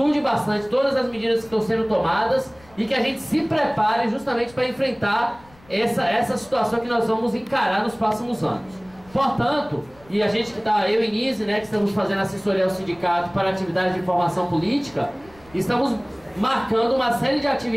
bastante todas as medidas que estão sendo tomadas e que a gente se prepare justamente para enfrentar essa situação que nós vamos encarar nos próximos anos. Portanto, e a gente que está, eu e Nise, né, que estamos fazendo assessoria ao sindicato para atividades de formação política, estamos marcando uma série de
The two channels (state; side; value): noise; left; rumble, 26 dB below the sound